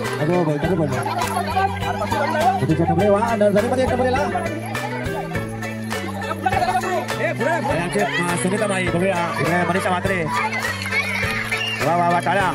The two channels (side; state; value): both; identical; correlation 1.00